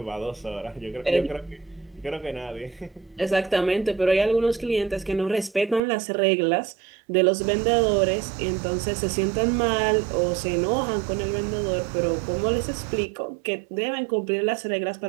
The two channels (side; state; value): left; drops out; at 5.8 s